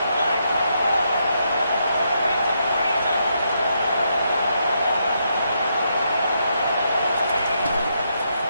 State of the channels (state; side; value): inverted; both; correlation -0.79